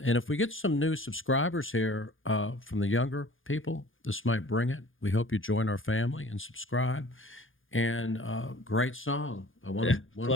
and if we get some new subscribers here from the younger people, this might bring it. We hope you join our family and subscribe. And great song. I want Yeah, to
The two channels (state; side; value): late; right; 0.58 ms